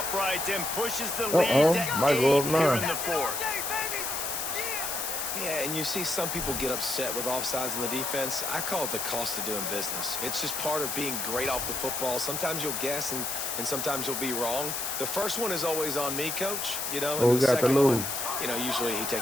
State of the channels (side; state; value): left; noise; hiss, 3 dB below the sound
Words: and pushes the lead to Might go up 8 here 9. in the 4th. Yeah, and you see some people get upset with offsides in the defense. I call it the cost of doing business. It's just part of being great off the football. Sometimes you'll guess and sometimes you'll be wrong. The first one is always on me, Coach. You know, and we the got the second lose. one, you know, usually he